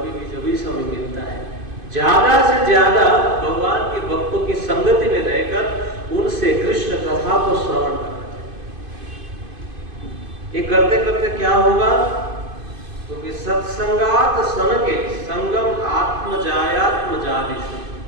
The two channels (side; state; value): left; late; 2.5 ms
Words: भी जब भी समय मिलता है, ज्यादा से ज्यादा भगवान के भक्तों की संगति में रहकर उनसे कृष्ण कथा को श्रवण करना चाहिए। ये करते करते क्या होगा, क्योंकि सत्संगात सन के संगम आत्मजायात्म जादिशु,